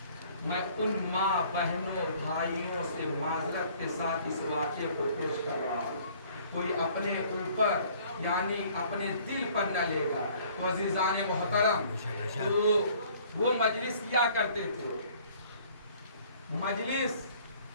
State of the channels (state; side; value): inverted; both; correlation -0.56